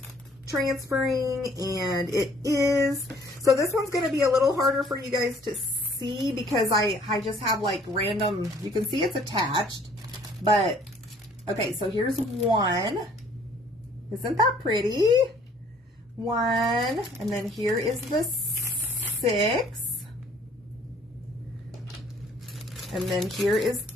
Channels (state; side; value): normal; both; correlation 0.58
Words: transferring, and it is. So this one's going to be a little harder for you guys to see because I just have like random, you can see it's attached, but okay, so here's one. Isn't that pretty? One, and then here is the 6. And then here is